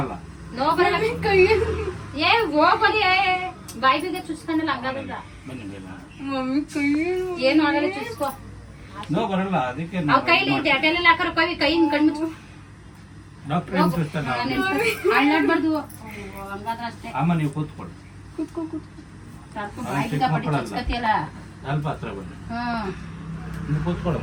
ಬಾಯಿ ಬಿಗ ಚುಚ್ಕೊಂಡಲ್ಲ ಹಂಗಾಗಲ್ಲ. ಏನು ಆಗಲ್ಲ, ಚುಚ್ಕೋ. ನೋ ಬರಲ್ಲ, ಅದಕ್ಕೆ ಅವ್ ಕೈಲಿ ಅಟೆಲ್ಲ ಹಾಕರ ಕೈಯಿಂದ ಕಣ್ಮುಚ್ಚು. ಡಾಕ್ಟರ್ ಏನು ಸಿಸ್ಟರ್ ಅಳ್ಳಾಡ್ಬಾರ್ದು, ಹಂಗಾದ್ರೆ ಅಷ್ಟೇ. ಅಮ್ಮ ನೀವು ಕೂತ್ಕೊಳ್ಳಿ. ಬಾಯಿ ಬಿಗ ಪಟ್ಟಿ ಚುಚ್ಕತಿಯಲ್ಲ. ಸ್ವಲ್ಪ ಹತ್ರ ಬನ್ನಿ. ನೀವು ಕೂತ್ಕೊಳ್ಳೋ.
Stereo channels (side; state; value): both; identical; correlation 1.00